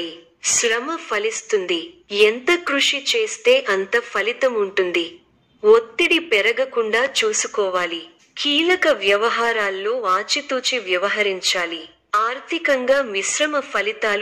శ్రమ ఫలిస్తుంది. ఎంత కృషి చేస్తే అంత ఫలితం ఉంటుంది. ఒత్తిడి పెరగకుండా చూసుకోవాలి. కీలక వ్యవహారాల్లో ఆచితూచి వ్యవహరించాలి. ఆర్థికంగా మిశ్రమ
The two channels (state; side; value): identical; both; correlation 1.00